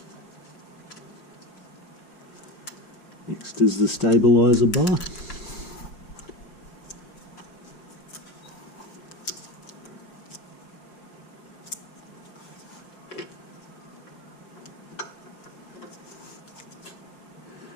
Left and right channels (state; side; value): late; right; 5.2 ms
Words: Next is the stabilizer bar.